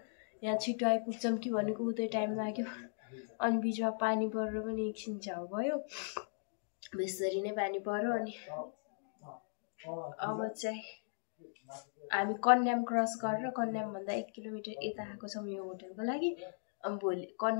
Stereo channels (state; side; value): silent; right; digital silence